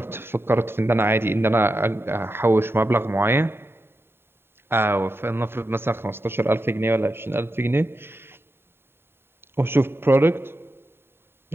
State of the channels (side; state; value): left; late; 0.11 ms